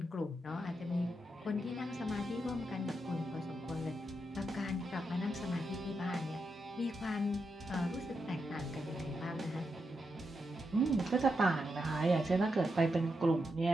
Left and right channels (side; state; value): both; normal; correlation 0.85